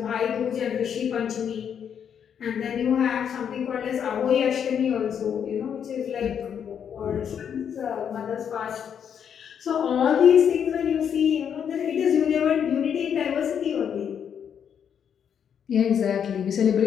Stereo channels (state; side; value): quieter; right; 8.1 dB